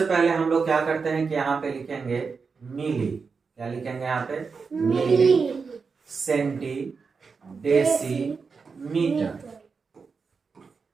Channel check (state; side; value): quieter; left; 5.1 dB